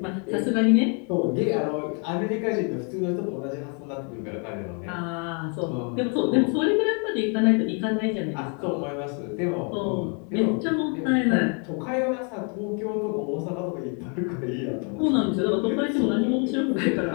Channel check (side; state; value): right; quieter; 38.3 dB